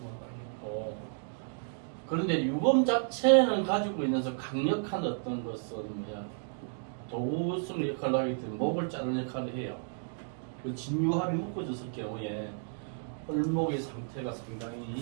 되겠고, 그런데 유금 자체는 가지고 있는 강력한 어떤 것은 뭐야? 도구성 역할을 하기 때문에 목을 자르는 역할을 해요. 그 진유합이 묶어졌을 경우에 을목의 상태가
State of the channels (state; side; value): silent; left; digital silence